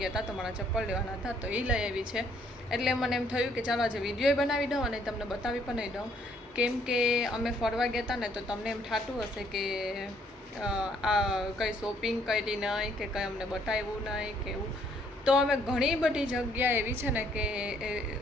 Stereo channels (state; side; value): normal; both; correlation 0.66